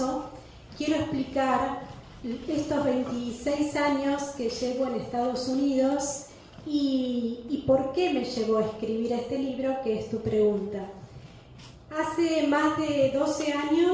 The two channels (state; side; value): identical; both; correlation 1.00